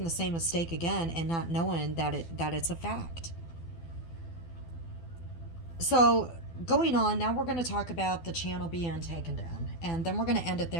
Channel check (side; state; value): right; late; 12 ms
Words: the same mistake again and not knowing that it's a fact. So going on now, we're going to talk about the channel being taken down, and then we're going to end it